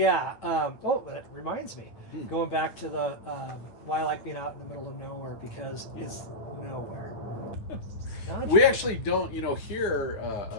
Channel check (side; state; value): right; late; 9.5 ms